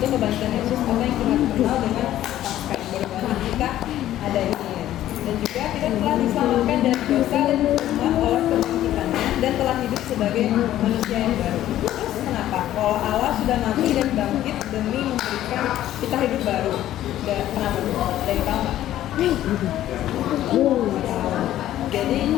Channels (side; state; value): right; quieter; 13.0 dB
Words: kebangkitan Yesus atau yang kita kenal dengan Paskah. Baru kita ada ini. Dan juga kita telah diselamatkan dari dosa dan hukuman oleh kebangkitannya dan telah hidup sebagai manusia yang baru. Terus kenapa? Kalau Allah sudah mati dan bangkit demi memberikan kita hidup baru. Kenapa? Ada yang tahu nggak? Jadi